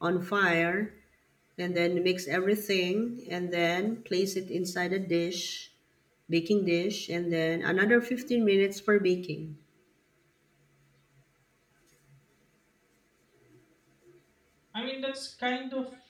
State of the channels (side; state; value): both; identical; correlation 1.00